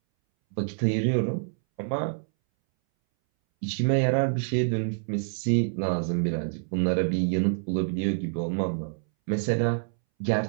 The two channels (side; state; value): left; silent; 60 dB below the other